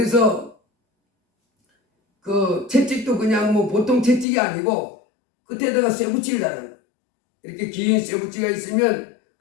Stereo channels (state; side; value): drops out; right; at 4.2 s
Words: 그 채찍도 그냥 보통 채찍이 아니고 끝에다가 쇠붙이를 달아요. 이렇게 긴 쇠붙이가 있으면